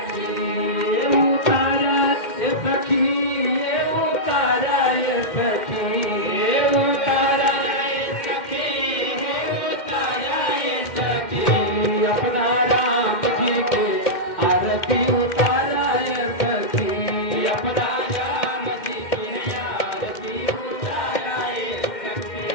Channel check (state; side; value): late; right; 2.1 ms